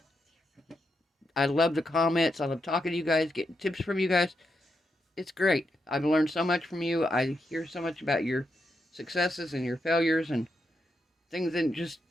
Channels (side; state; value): both; normal; correlation 0.83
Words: I love the comments. I love talking to you guys, getting tips from you guys. It's great. I've learned so much from you. I hear so much about your successes and your failures and things